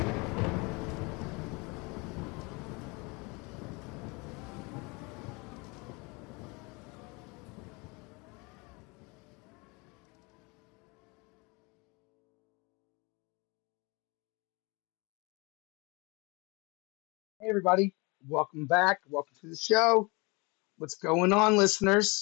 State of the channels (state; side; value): quieter; right; 28.0 dB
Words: Hey, everybody, welcome back. Welcome to the show. What's going on,